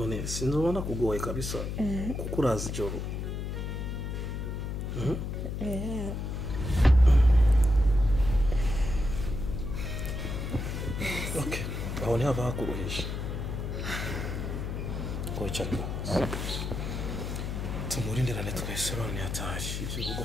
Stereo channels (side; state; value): left; noise; hum, 4 dB below the sound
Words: sinzobona kugoye kabisa kuko urazi ijoro okay aho ntihava hakuruhisha wicara tumurindirane twese none yataje ibyo rugo